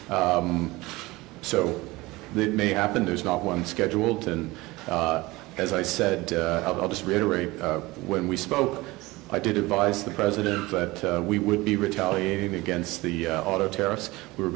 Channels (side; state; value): left; quieter; 21.1 dB